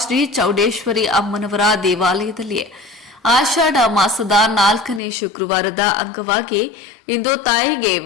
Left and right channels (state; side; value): drops out; right; at 5.0 s